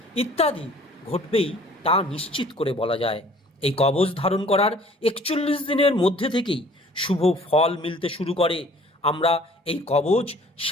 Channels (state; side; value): normal; both; correlation 0.53